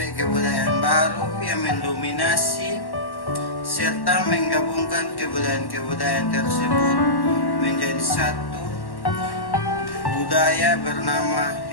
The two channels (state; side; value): late; right; 1.1 ms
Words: baru yang mendominasi serta menggabungkan kebudayaan tersebut menjadi satu budaya bernama